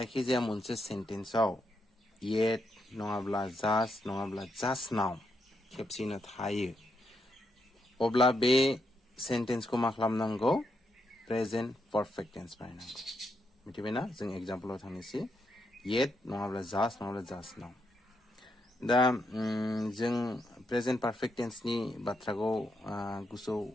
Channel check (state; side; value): normal; both; correlation 0.81